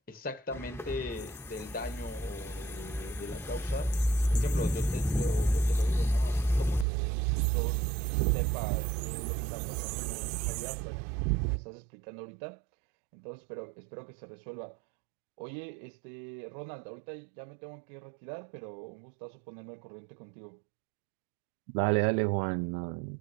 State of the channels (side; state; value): left; drops out; at 6.9 s